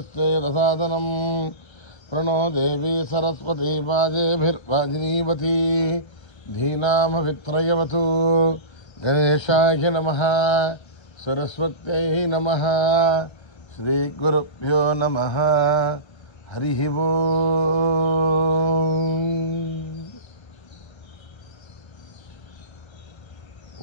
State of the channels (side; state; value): right; late; 1.3 ms